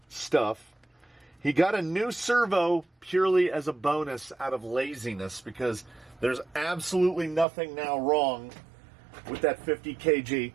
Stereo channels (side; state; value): left; drops out; at 7.5 s